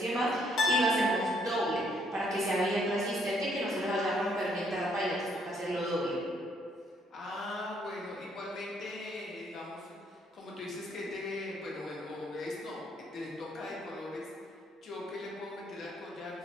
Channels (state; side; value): normal; both; correlation 0.69